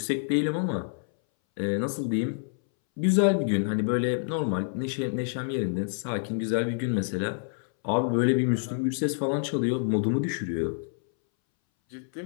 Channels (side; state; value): right; silent; 60 dB below the other